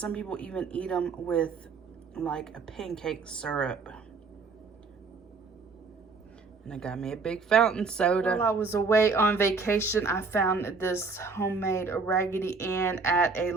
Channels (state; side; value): quieter; left; 4.5 dB